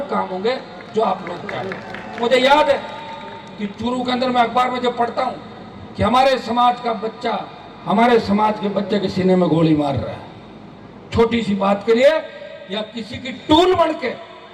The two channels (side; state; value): both; identical; correlation 1.00